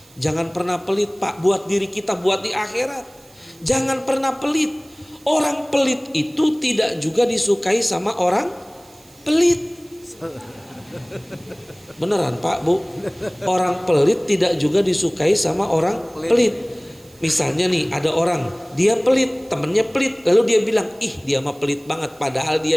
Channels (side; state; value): right; noise; hiss, 27 dB below the sound